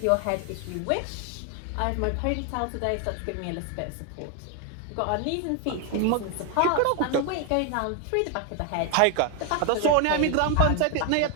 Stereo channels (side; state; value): both; different; correlation 0.01